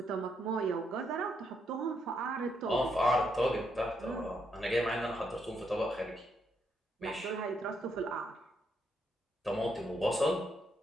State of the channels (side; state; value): both; normal; correlation 0.77